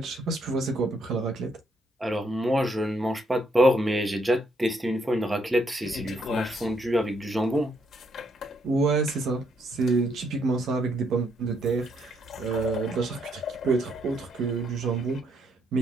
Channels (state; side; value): normal; both; correlation 0.74